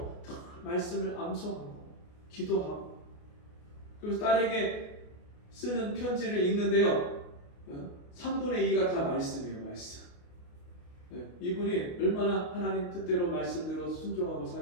말씀을 암송하고 기도하고, 그래서 딸에게 쓰는 편지를 읽는데요, 3분의 2가 다 말씀이에요. 말씀. 이분이 얼마나 하나님 뜻대로 말씀대로 순종하고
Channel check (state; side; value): late; right; 28 ms